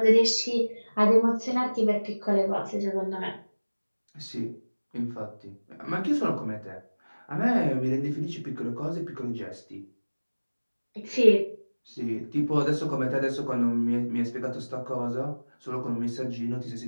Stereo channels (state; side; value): inverted; both; correlation -1.00